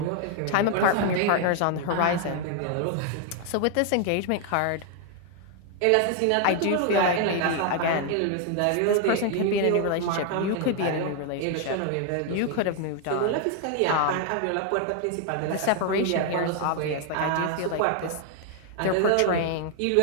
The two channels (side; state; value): both; different; correlation 0.00